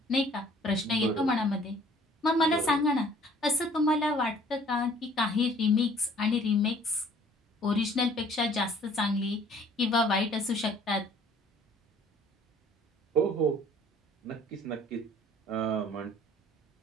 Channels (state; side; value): normal; both; correlation 0.55